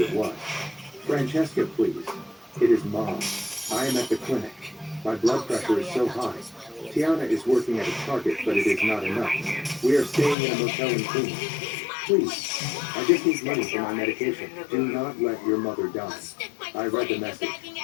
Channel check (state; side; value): drops out; right; at 10.4 s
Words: it was. Francesca, please. It is Mom. I am at the clinic. My blood pressure is so high. Tiana is working at a Target, but it is not enough. We are staying in a motel in Queens. Please, I just need money for my medication. Do not let your mother die. I read the message.